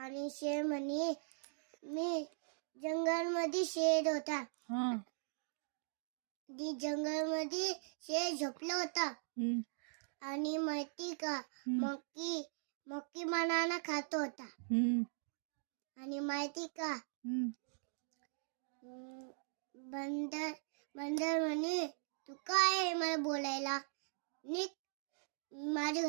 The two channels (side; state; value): left; silent; digital silence